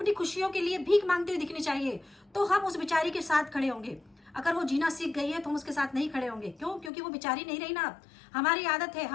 खुशियों के लिए भीख मांगती हुई दिखनी चाहिए, तो हम उस बेचारी के साथ खड़े होंगे। अगर वो जीना सीख गई है तो हम उसके साथ नहीं खड़े होंगे। क्यों? क्योंकि वो बेचारी नहीं रही ना। हमारी आदत है,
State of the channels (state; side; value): drops out; right; at 6.9 s